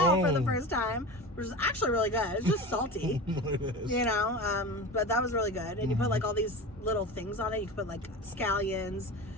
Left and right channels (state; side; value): normal; both; correlation 0.29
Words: for the Oh. first time, which is actually really good. It's just salty, It is. you know, but that was really good. And you put like all these little things on it. You could put like scallions,